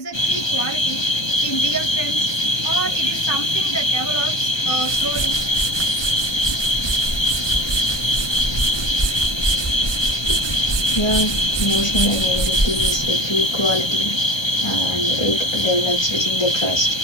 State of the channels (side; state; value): right; late; 1.2 ms